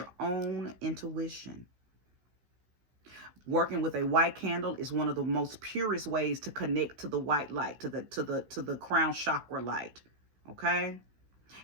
own intuition. Working with a white candle is one of the most purest ways to connect to the white light, to the crown chakra light. Okay?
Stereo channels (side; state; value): left; late; 15 ms